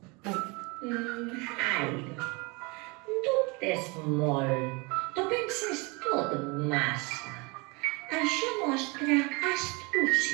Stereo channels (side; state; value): left; quieter; 28.1 dB